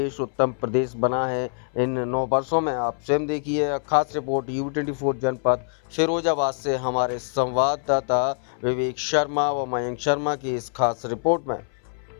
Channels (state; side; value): silent; right; 61 dB below the other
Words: उत्तम प्रदेश बना है इन 9 वर्षों में। आप स्वयं देखिए। खास रिपोर्ट U24 जनपद फिरोजाबाद से हमारे संवाददाता विवेक शर्मा व मयंक शर्मा की इस खास रिपोर्ट में।